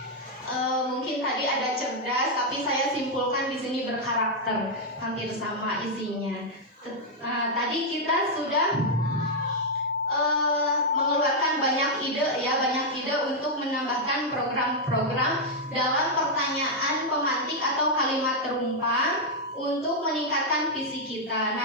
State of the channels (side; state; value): both; normal; correlation -0.02